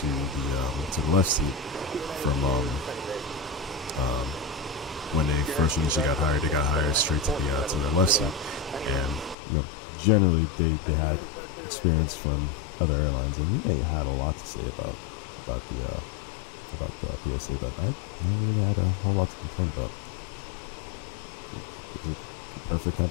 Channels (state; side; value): drops out; right; at 9.3 s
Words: the left seat from when they first initially got hired. They got hired straight to the left seat, and generally they had experience from other airlines, and they had a lot to say about the PSA, but I really had a whole lot to complain about. Is it a perfect